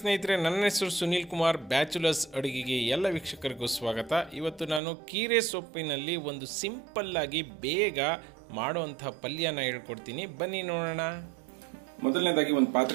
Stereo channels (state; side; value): drops out; left; at 4.8 s